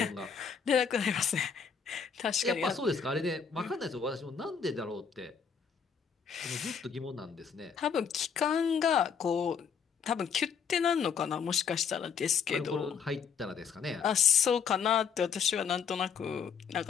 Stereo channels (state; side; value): quieter; right; 6.6 dB